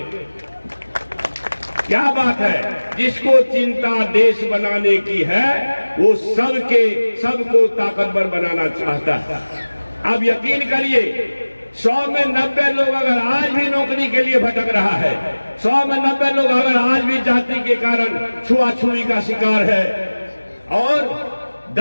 क्या बात है, जिसको चिंता देश बनाने की है वो सबको ताकतवर बनाना चाहता है। अब यकीन करिए 100 में 90 लोग अगर आज भी नौकरी के लिए भटक रहा है, 100 में 90 लोग अगर आज भी जाति के कारण छुआछुई का शिकार है, और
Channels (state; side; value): inverted; both; correlation -1.00